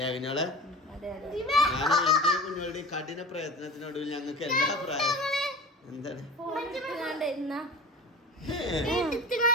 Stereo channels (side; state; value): both; normal; correlation 0.37